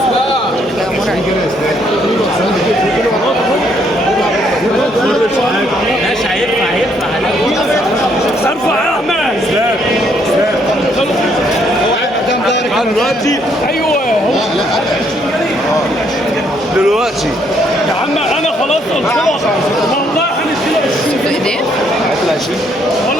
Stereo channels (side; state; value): both; normal; correlation 0.70